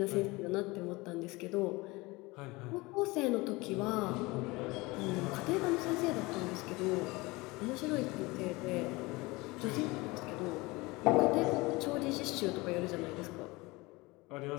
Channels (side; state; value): right; quieter; 23.0 dB